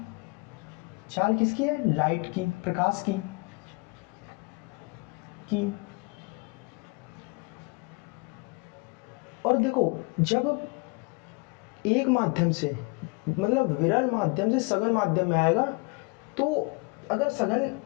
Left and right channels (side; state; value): right; quieter; 28.9 dB